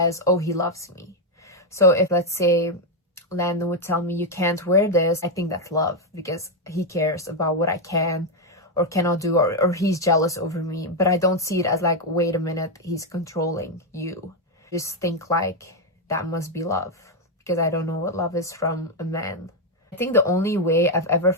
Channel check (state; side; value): normal; both; correlation 0.03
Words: oh, he loves me. So if, let's say, Landon would tell me, you can't wear this, I think that's love, because he cares about what I can or cannot do, or he's jealous over me. But I don't see it as like, wait a minute, he's controlling you. Just think like that must be love, because I don't know what love is from a man. I think the only way I've ever